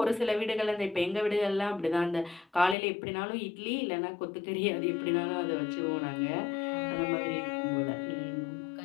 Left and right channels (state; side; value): drops out; right; at 2.8 s